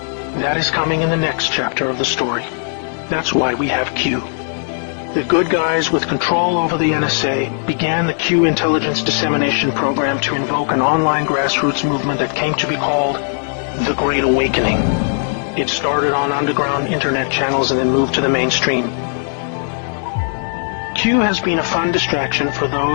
That is coming in the next chapter of the story. That's why we have Q. The good guys with control over the NSA began the Q intelligence dissemination program to invoke an online grassroots movement that came to be called the Great Awakening. It started on underground internet channels and then moved to the mainstream. Q has been a fun distraction for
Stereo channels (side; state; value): right; silent; digital silence